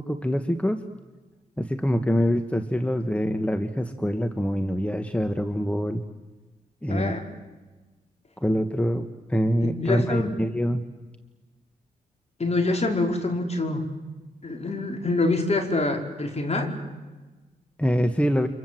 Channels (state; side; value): normal; both; correlation 0.84